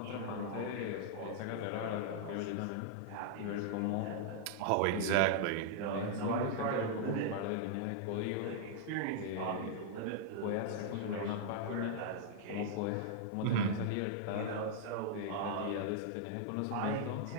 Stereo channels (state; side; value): different; both; correlation -0.01